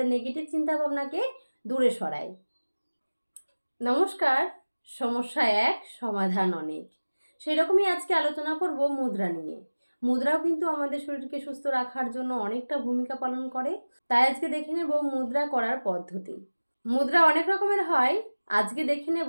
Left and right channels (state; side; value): inverted; both; correlation -1.00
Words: নেগেটিভ চিন্তাভাবনাকে দূরে সরায়। নমস্কার। সমস্যা এক, সমাধান অনেক। সেই রকমই আজকে আলোচনা করব মুদ্রা নিয়ে। মুদ্রাও কিন্তু আমাদের শরীরকে সুস্থ রাখার জন্য অনেকটা ভূমিকা পালন করে। তাই আজকে দেখে নেব মুদ্রা করার পদ্ধতি। মুদ্রা অনেক রকমের হয়। আজকে দেখে